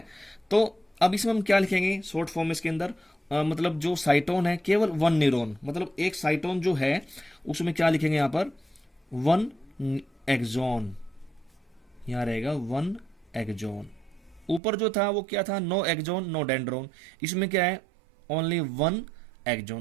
तो अब इसमें हम क्या लिखेंगे शॉर्ट फॉर्म इसके अंदर, मतलब जो साइटोन है केवल वन न्यूरॉन, मतलब एक साइटोन जो है उसमें क्या लिखेंगे यहां पर, वन एक्सोन, यहां रहेगा वन एक्सोन। ऊपर जो था वो क्या था, नो एक्सोन नो डेंड्रोन, इसमें क्या है, ओनली वन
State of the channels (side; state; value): left; drops out; at 14.6 s